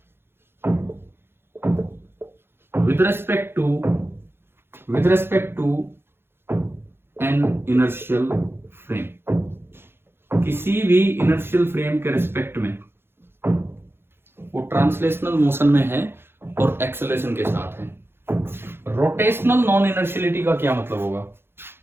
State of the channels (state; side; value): late; left; 0.11 ms